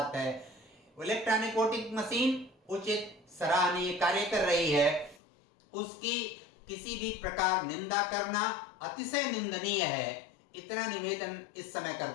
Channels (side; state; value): right; drops out; at 5.2 s